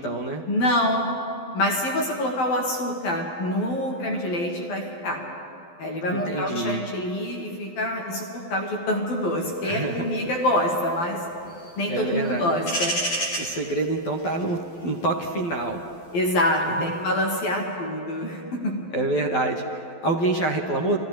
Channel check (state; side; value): late; right; 12 ms